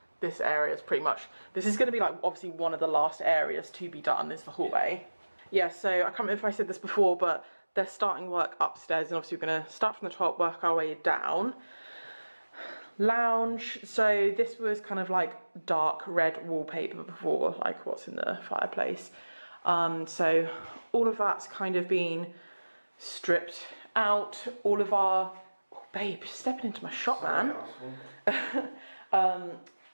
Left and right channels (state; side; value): inverted; both; correlation -1.00